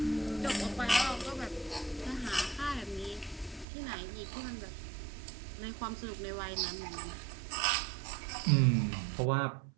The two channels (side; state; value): left; drops out; at 3.7 s